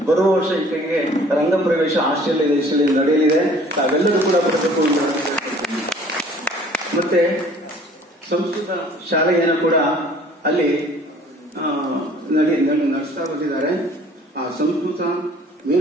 ಬರುವ ವರ್ಷ ಈಕೆಗೆ ರಂಗ ಪ್ರವೇಶ ಆಸ್ಟ್ರೇಲಿಯಾ ದೇಶದಲ್ಲಿ ನಡೆಯಲಿದೆ. ತಾವೆಲ್ಲರೂ ಕೂಡ ಬರಬೇಕು. ಮತ್ತೆ ಸಂಸ್ಕೃತ ಶಾಲೆಯನ್ನು ಕೂಡ ಅಲ್ಲಿ ನಡೆಸ್ತಾ ಬಂದಿದ್ದಾರೆ. ಆ ಸಂಸ್ಕೃತ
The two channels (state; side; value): normal; both; correlation 0.53